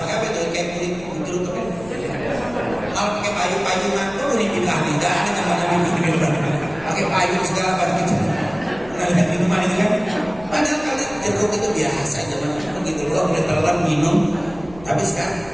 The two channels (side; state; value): left; noise; rumble, 20 dB below the sound